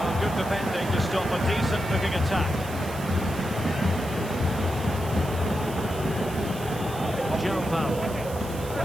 good defending to stop a decent-looking attack. Joe Powell.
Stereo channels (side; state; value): right; noise; hiss, 16 dB below the sound